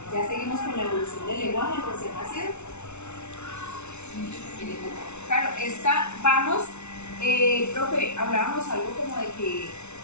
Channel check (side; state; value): right; late; 0.82 ms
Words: ya seguimos con la evolución del lenguaje del recién nacido. Claro, profe, hablábamos algo como de que